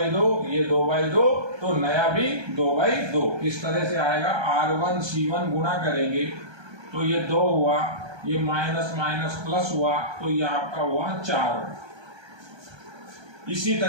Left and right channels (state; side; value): late; left; 1.3 ms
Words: ये 2/2, तो नया भी 2/2। किस तरह से आएगा, R1 C1 गुणा करेंगे तो ये 2 हुआ, ये माइनस माइनस प्लस हुआ, तो ये आपका हुआ 4। इसी